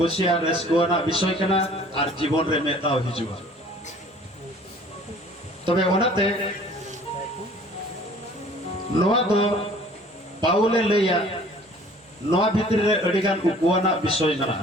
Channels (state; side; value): normal; both; correlation 0.51